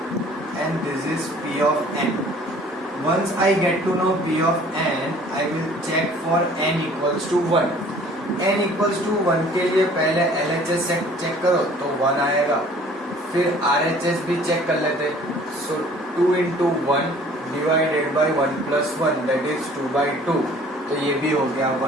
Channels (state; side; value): normal; both; correlation 0.52